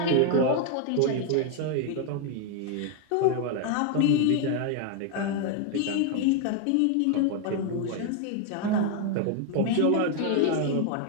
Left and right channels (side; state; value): both; different; correlation 0.01